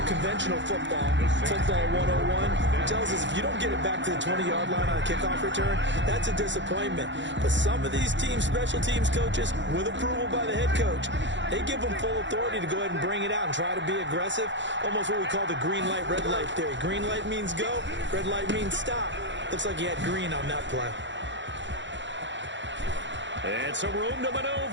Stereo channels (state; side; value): late; left; 0.54 ms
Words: conventional football 101, tells us if you don't get it back to the 20-yard line on a kickoff return, that's a disappointment. But some of these teams, special teams coaches, with approval by the head coach, they give them full authority to go ahead and bring it out and try to be aggressive. Almost what we call the green light, red light theory. Green light means go, red light means stop. Looks like he had green on that play. And some room to